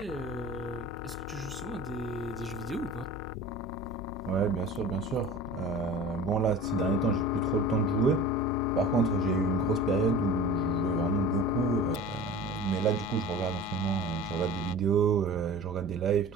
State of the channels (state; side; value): noise; left; hum, 18 dB below the sound